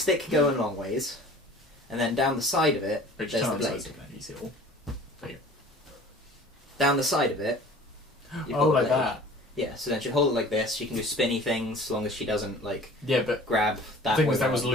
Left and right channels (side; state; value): both; normal; correlation 0.45